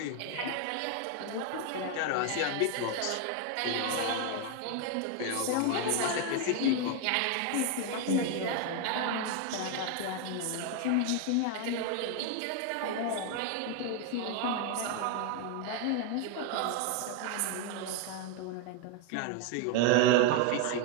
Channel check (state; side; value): different; both; correlation 0.01